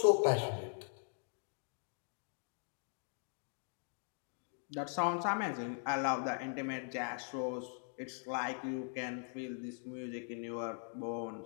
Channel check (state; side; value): silent; right; 51 dB below the other